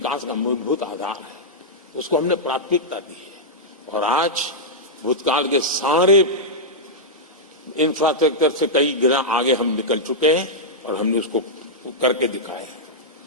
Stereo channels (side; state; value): both; normal; correlation -0.07